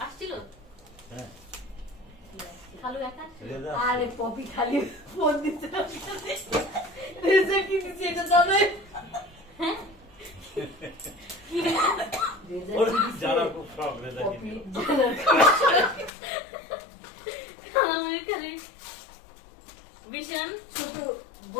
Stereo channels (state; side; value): drops out; right; at 16.1 s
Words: আসছিল? হ্যাঁ খালু একা আসছিল? রেজা আরে পপি খালি ফোন দিতে রেজা কি দিচ্ছে এটা জানে? হ্যাঁ রেজা ওর কি দিচ্ছে? যারা